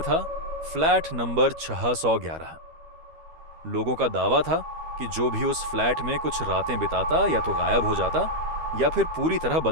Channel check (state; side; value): late; left; 13 ms